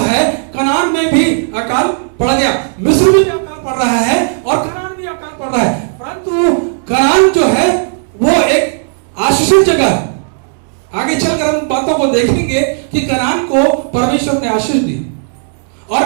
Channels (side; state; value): left; silent; digital silence